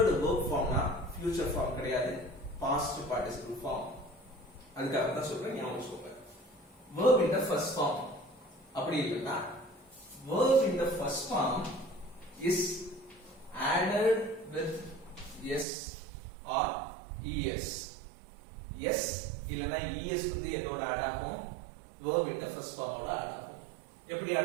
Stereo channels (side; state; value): left; drops out; at 15.7 s